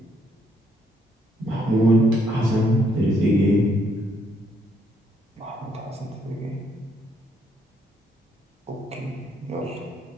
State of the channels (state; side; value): normal; both; correlation 0.71